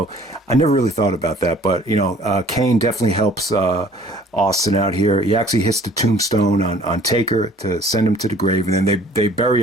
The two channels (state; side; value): normal; both; correlation 0.53